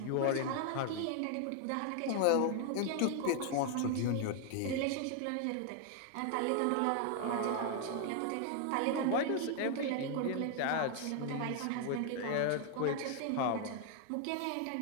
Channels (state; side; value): different; both; correlation 0.00